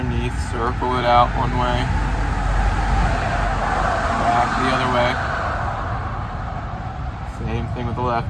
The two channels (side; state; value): both; identical; correlation 1.00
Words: circle it out one way, back the other way. Same thing with the